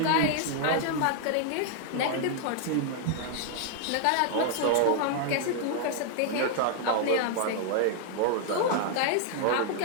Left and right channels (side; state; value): both; different; correlation 0.00